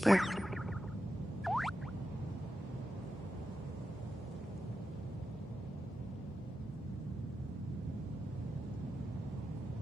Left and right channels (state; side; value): normal; both; correlation 0.89